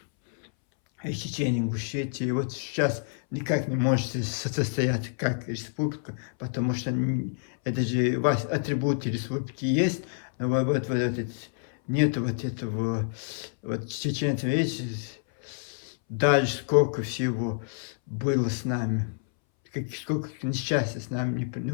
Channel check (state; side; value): silent; right; 59 dB below the other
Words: из Чечни, Ингушетии. И вот сейчас никак не можете состояться как республика, потому что это же у вас атрибуты республики есть, но вот нету вот этого, вот чеченцам, видите, дальше сколько всего было с нами, сколько несчастья с нами,